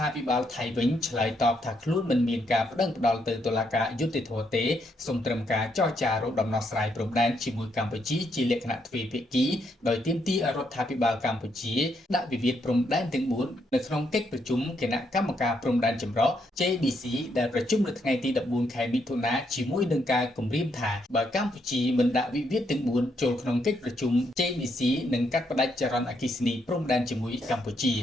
ាភិបាលថៃវិញឆ្លើយតបថាខ្លួនមិនមានការប្តឹងផ្តល់ទៅតុលាការយុត្តិធម៌ទេសូមត្រឹមការចរចារកដំណោះស្រាយព្រំដែនជាមួយកម្ពុជាជាលក្ខណៈទ្វេភាគីដោយទាមទារឲ្យរដ្ឋាភិបាលកម្ពុជាដាក់វិវាទព្រំដែនទាំង4នៅក្នុងកិច្ចប្រជុំគណៈកម្មការព្រំដែនចម្រុះ JBC ដែលប្រជុំនៅថ្ងៃទី14ខែមិថុនាជាមួយនឹងការគម្រាមថាបើកម្ពុជាមិនដាក់វិវាទទាំង4ចូលក្នុងកិច្ចប្រជុំ JBC នឹងកាត់ផ្តាច់ចរន្តអគ្គិសនីព្រំដែនជាមួយកម្ពុជា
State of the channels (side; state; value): both; normal; correlation 0.76